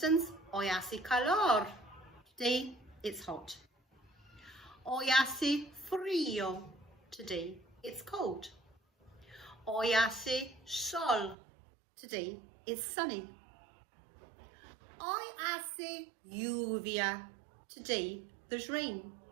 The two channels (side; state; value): left; drops out; at 11.4 s